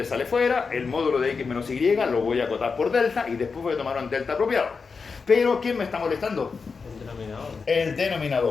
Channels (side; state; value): right; quieter; 5.0 dB